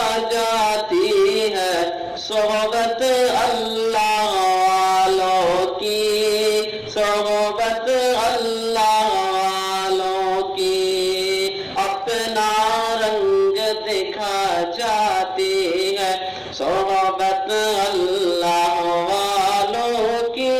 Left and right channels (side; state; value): both; identical; correlation 1.00